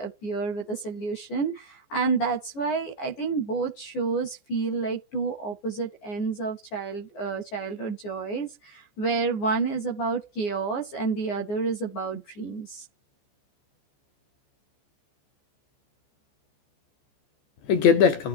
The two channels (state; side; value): late; right; 14 ms